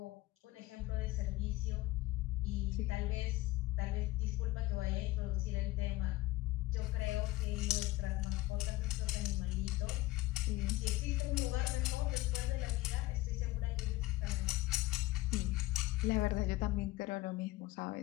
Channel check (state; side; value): quieter; right; 18.5 dB